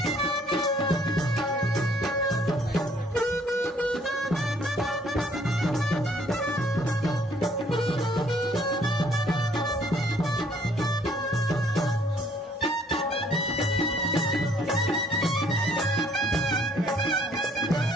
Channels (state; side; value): normal; both; correlation 0.62